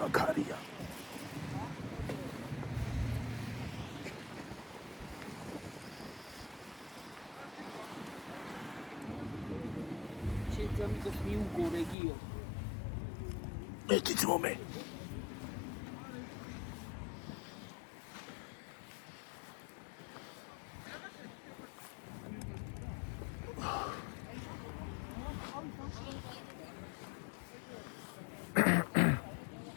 ქარია. შეძამიკოს მიუგო რეგიო. ერთიც მომე.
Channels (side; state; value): right; drops out; at 12.0 s